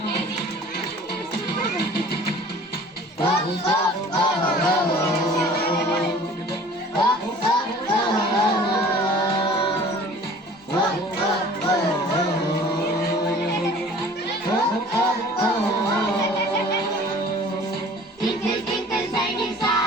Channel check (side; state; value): both; normal; correlation 0.47